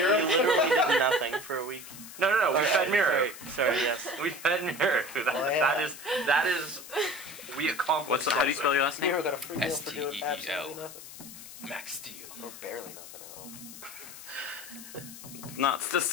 literally did nothing for a week. No, we fed Miro. Sorry, yes. We fed Miro. That is, we accomplished. How do you spell your last name? Miro got a free meal for doing STEEL. absolutely nothing. Max Steel. Or barely nothing at all. Not the.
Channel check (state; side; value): noise; left; hiss, 14 dB below the sound